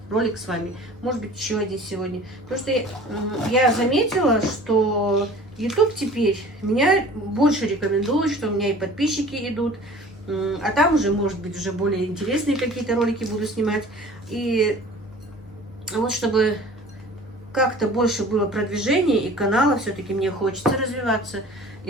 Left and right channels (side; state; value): both; normal; correlation 0.45